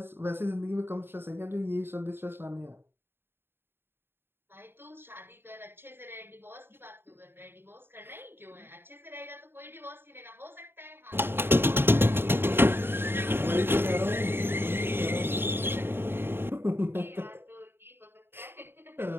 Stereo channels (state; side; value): late; left; 0.11 ms